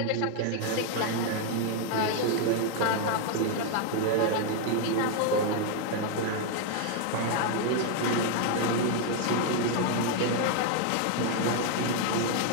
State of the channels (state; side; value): different; both; correlation 0.00